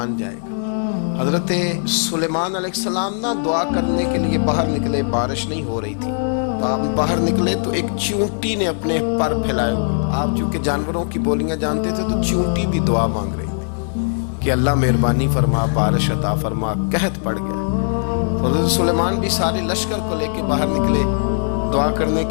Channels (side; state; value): right; silent; digital silence